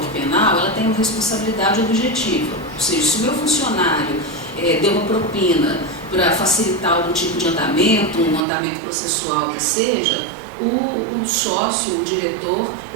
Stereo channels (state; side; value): drops out; left; at 8.4 s